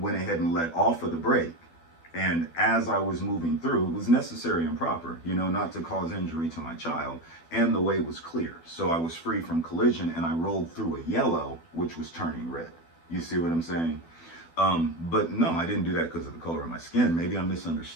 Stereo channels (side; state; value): right; late; 12 ms